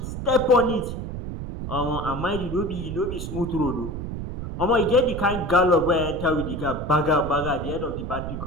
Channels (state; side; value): noise; right; rumble, 6 dB below the sound